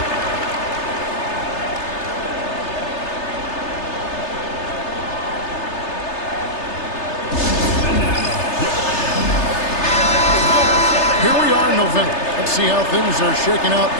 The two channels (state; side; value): late; right; 3.3 ms